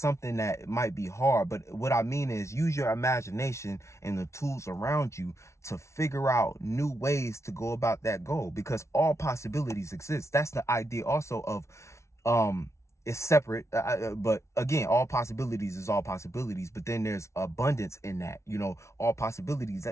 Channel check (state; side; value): late; right; 0.13 ms